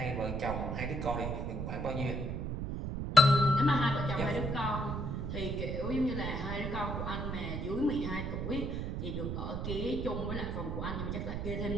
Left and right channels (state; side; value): noise; right; rumble, 3 dB below the sound